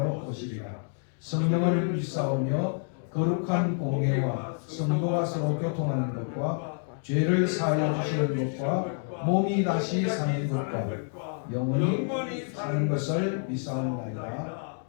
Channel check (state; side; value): silent; right; 59 dB below the other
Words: 오시리라. 성령을 믿사오며 거룩한 공예와 성도가 서로 교통하는 것과 죄를 사하여 주시는 것과 몸이 다시 사는 것과 영원히 사는 것을 믿사옵나이다.